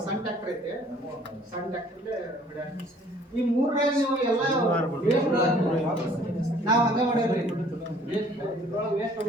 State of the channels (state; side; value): normal; both; correlation 0.56